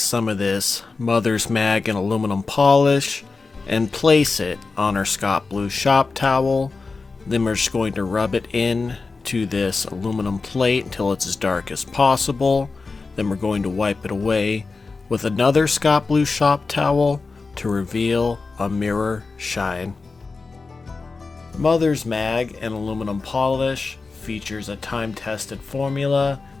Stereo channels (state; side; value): quieter; right; 4.1 dB